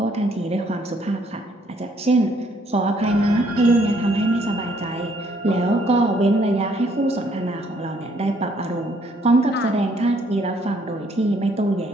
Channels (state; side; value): normal; both; correlation 0.66